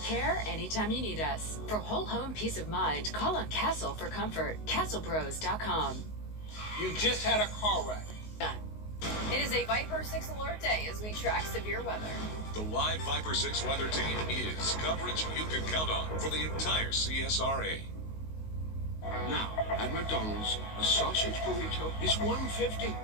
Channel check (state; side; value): late; right; 19 ms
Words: care anytime you need us. For whole home peace of mind, call on Castle for comfort. CastleBros.com. You just had a car wreck. It is a Viper 6 alert day as we track severe weather. The live Viper 6 weather team is coverage you can count on for the entire CSRA. Now, at McDonald's, a sausage burrito is $1.50.